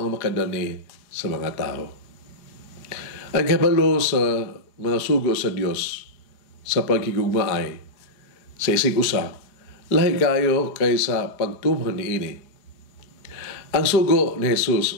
ang makadani sa mga tao. Ang kabalo sa mga sugo sa Dios sa paghigugmaay sa isig usa, lahi kayo kaysa pagtuman niini. Ang sugo ni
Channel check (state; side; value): late; right; 4.8 ms